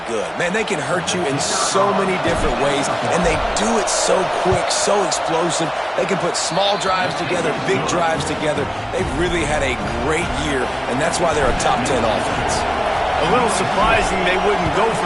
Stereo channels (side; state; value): both; identical; correlation 1.00